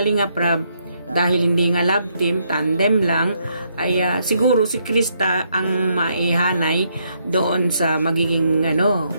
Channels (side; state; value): both; inverted; correlation -0.75